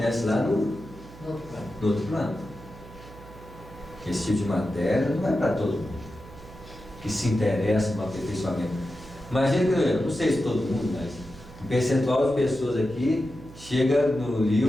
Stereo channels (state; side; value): noise; right; hum, 18 dB below the sound